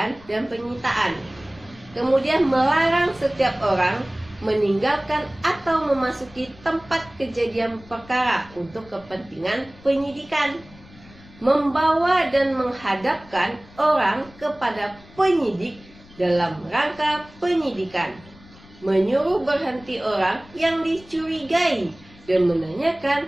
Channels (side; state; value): left; noise; rumble, 23 dB below the sound